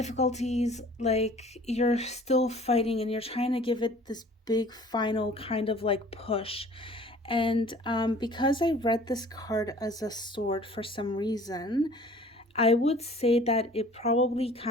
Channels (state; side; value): normal; both; correlation 0.49